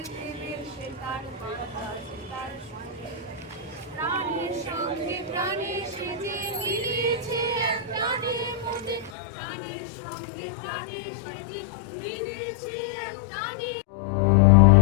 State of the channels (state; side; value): drops out; right; at 9.1 s